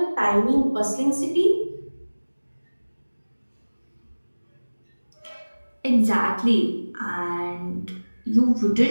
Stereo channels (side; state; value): both; inverted; correlation -1.00